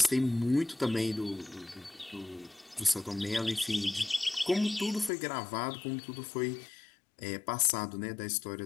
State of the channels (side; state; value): right; drops out; at 5.1 s